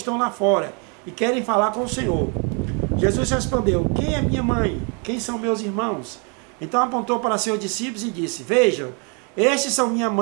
lá fora e querem falar com o Senhor. Jesus respondeu: quem é minha mãe? Quem são meus irmãos? Então apontou para seus discípulos e disse: vejam, estes são minha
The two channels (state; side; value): quieter; left; 35.5 dB